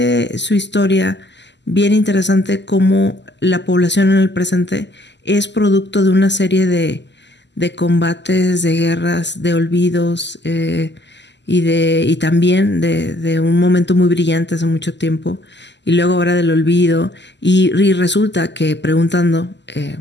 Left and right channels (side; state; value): right; late; 0.51 ms